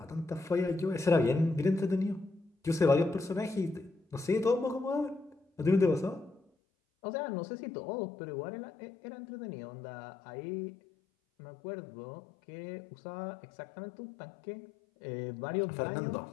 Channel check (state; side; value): drops out; right; at 6.4 s